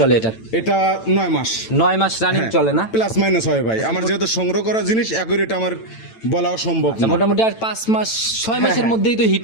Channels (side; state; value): right; late; 9.0 ms